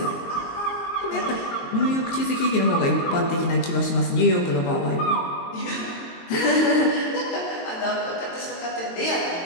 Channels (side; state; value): right; late; 22 ms